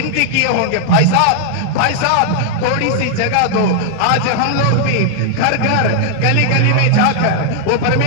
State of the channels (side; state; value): both; different; correlation 0.00